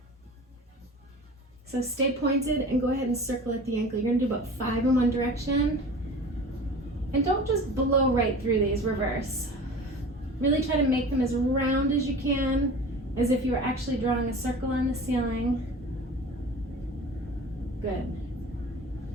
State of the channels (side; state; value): both; normal; correlation 0.38